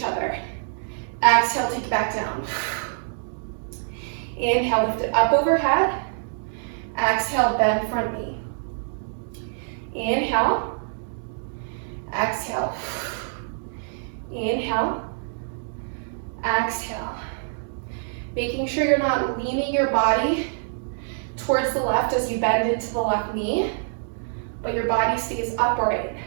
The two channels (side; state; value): left; silent; digital silence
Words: other. Exhale, take it back down. Inhale, lift it up overhead. Exhale, bend front knee. Inhale. Exhale. Inhale. Exhale. Making sure you're not leaning your body towards the left as you bend into the left knee, but your body stays upright.